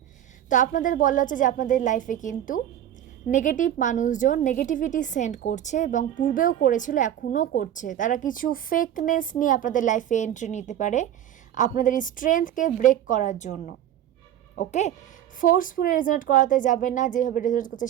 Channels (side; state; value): left; quieter; 11.0 dB